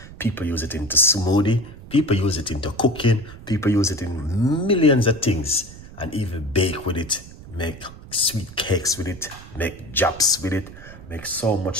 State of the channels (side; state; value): right; noise; rumble, 17 dB below the sound